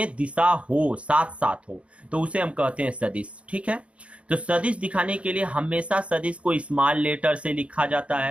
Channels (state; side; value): late; left; 0.062 ms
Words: दिशा हो, साथ साथ हो, तो उसे हम कहते हैं सदिश। ठीक है, तो सदिश दिखाने के लिए हमेशा सदिश को स्मॉल लेटर से लिखा जाता